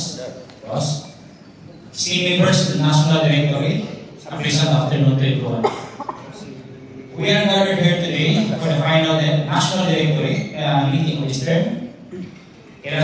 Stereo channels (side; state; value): both; identical; correlation 1.00